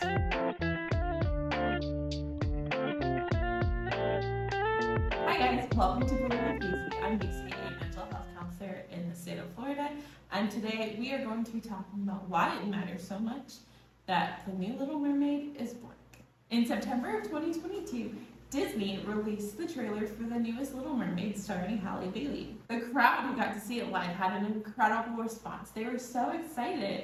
Hi guys, welcome to Blatantly. I'm Casey, a mental health counselor in the state of Florida, and today we are going to be talking about why it matters so much that the new Little Mermaid is black. In September of 2022, Disney released the trailer for the newest Little Mermaid starring Halle Bailey. The crowd who got to see it live had an incredible response. They were so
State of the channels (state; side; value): identical; both; correlation 1.00